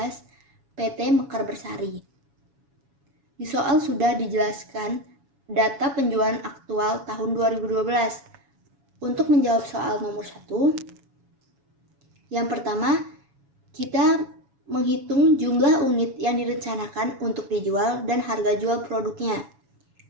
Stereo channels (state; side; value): late; left; 7.2 ms